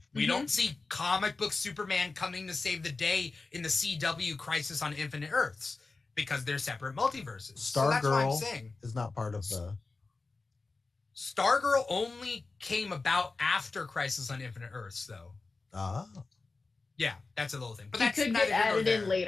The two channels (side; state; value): right; quieter; 3.8 dB